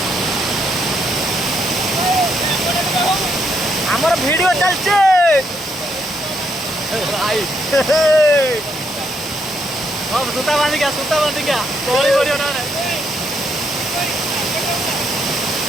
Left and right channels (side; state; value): both; normal; correlation 0.75